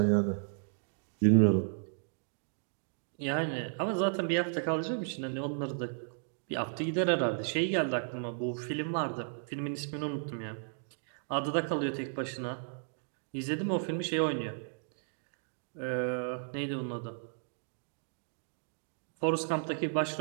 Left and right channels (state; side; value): silent; left; digital silence